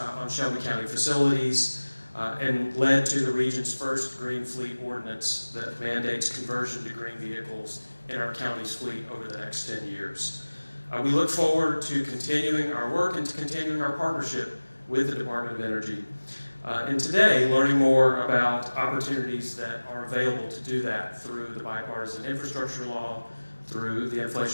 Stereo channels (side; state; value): both; inverted; correlation -1.00